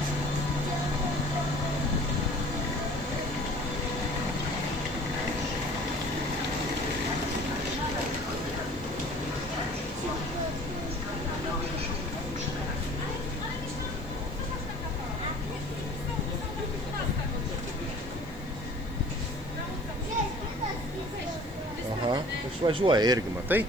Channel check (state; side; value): noise; right; hiss, 25 dB below the sound